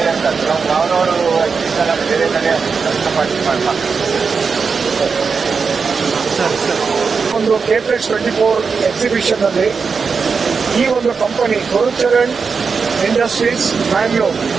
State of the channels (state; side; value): quieter; left; 5.3 dB